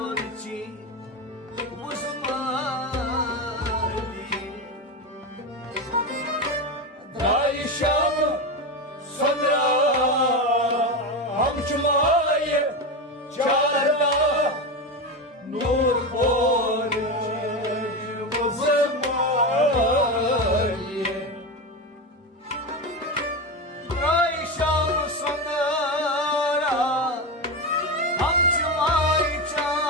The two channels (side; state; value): both; normal; correlation 0.17